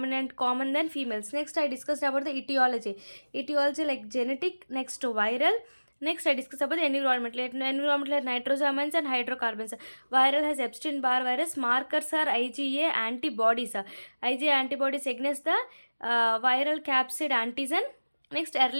common than females. Next, I discussed about the etiology. Etiology like genetic. Next, viral. Next, I discuss about the environment. Environment like nitrosamines and hydrocarbons. Viral has Epstein-Barr virus. Markers are IgA antibodies. IgA antibodies against the viral capsid antigen. Next,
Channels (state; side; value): inverted; both; correlation -1.00